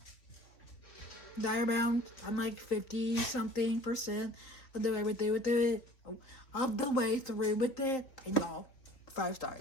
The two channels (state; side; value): late; right; 3.9 ms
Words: Dire Bound, I'm like 50-something% of the way with it. Of the way through with it. And y'all, 5